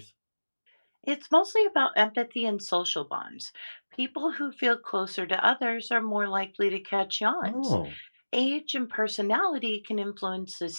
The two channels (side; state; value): both; inverted; correlation -1.00